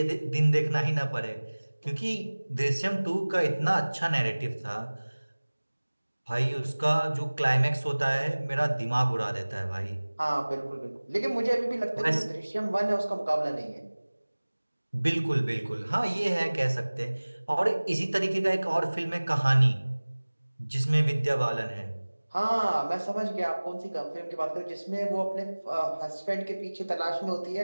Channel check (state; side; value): inverted; both; correlation -1.00